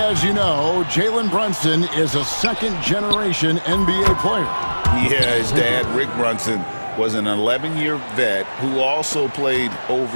you know, Jalen Brunson is a second-generation NBA player. Yeah, his dad, Rick Brunson, was an 11-year vet who also played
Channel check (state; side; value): inverted; both; correlation -1.00